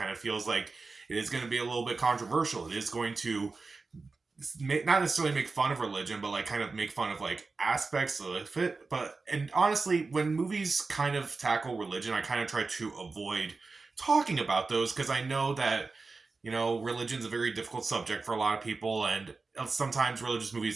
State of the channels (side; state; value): left; quieter; 4.0 dB